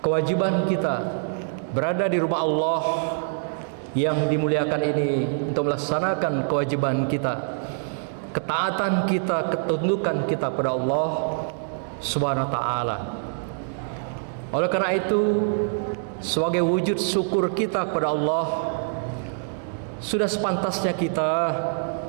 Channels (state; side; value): silent; left; digital silence